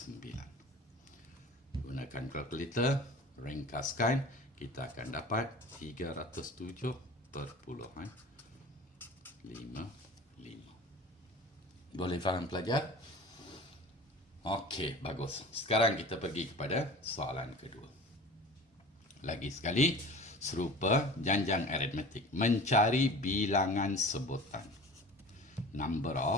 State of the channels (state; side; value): normal; both; correlation 0.40